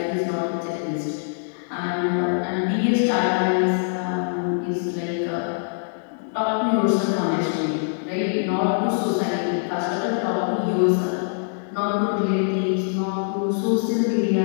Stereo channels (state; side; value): silent; right; digital silence